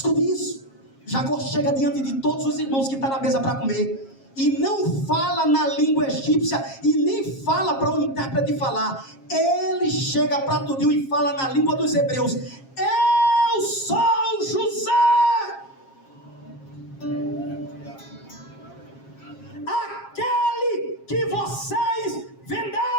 isso. Jacó chega diante de todos os irmãos que estão na mesa para comer, e não fala na língua egípcia, e nem fala para o intérprete falar. Ele chega para tudinho e fala na língua dos hebreus: eu sou José, aquele que vocês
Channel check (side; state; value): right; late; 7.4 ms